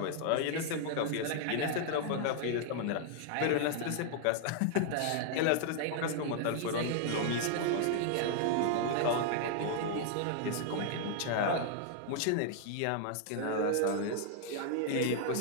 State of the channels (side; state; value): both; different; correlation 0.00